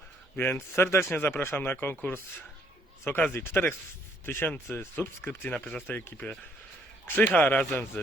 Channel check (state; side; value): normal; both; correlation 0.67